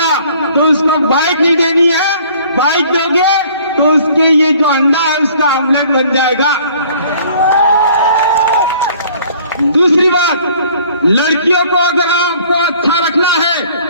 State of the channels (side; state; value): both; inverted; correlation -0.55